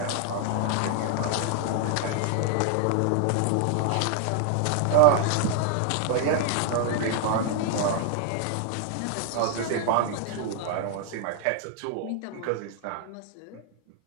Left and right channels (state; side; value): different; both; correlation 0.00